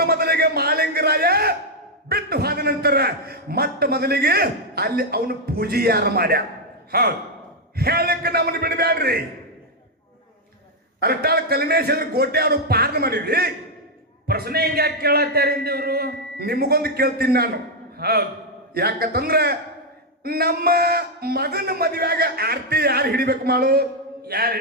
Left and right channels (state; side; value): normal; both; correlation 0.00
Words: ಮೊದಲಿಗೆ ಮಾಳಿಂಗರಾಯ ಬಿಟ್ಟು ಹೋದ ನಂತರ ಮೊಟ್ಟ ಮೊದಲಿಗೆ ಅಲ್ಲಿ ಅವನು ಪೂಜೆ ಯಾರು ಮಾಡ್ಯ. ಹೌದು. ಹೇಳಕ್ಕೆ ನಮ್ಮನ್ನು ಬಿಡಬ್ಯಾಡ್ರಿ. ಅರಟಾಳ ಕಲ್ಮೇಶ್ವರ ಕೋಟೆ ಅವರು ಪಾರ್ನ ಮಾಡಿದ್ರಿ. ಪ್ರಶ್ನೆ ಹಿಂಗೆ ಯಾಕೆ ಕೇಳತ್ತಾರಿಂದ ಇವರು? ನಿಮಗೊಂದು ಕೇಳ್ತೀನಿ ನಾನು. ಹೌದು. ಯಾಕಂದ್ರೆ ನಮ್ಮ ಮಗನ ಮದುವೆಯಾಗ ಆರ್ತಿ ಯಾರು ಹಿಡಿಬೇಕು ಮಾಡು? ಯಾರು